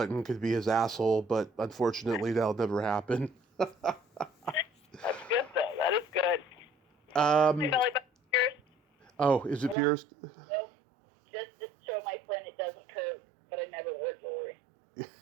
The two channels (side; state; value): left; drops out; at 9.8 s